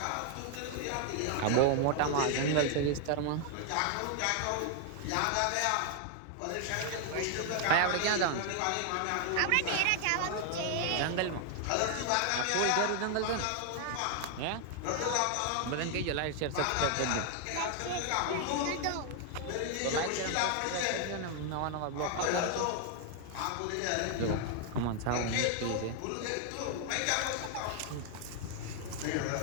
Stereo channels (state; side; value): different; both; correlation 0.00